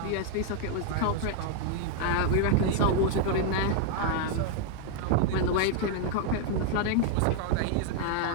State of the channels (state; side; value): different; both; correlation 0.00